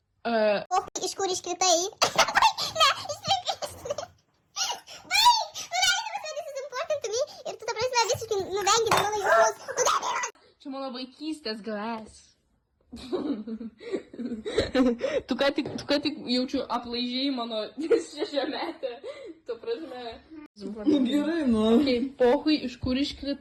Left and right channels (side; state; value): both; identical; correlation 1.00